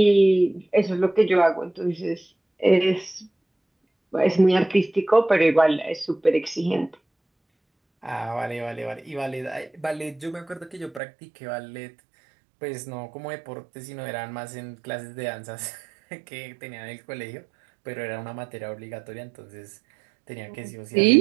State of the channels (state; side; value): drops out; left; at 11.0 s